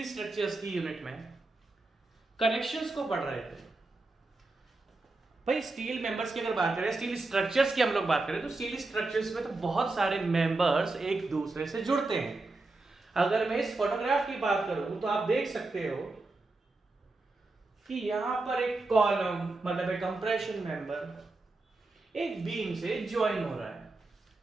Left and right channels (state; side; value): quieter; left; 3.2 dB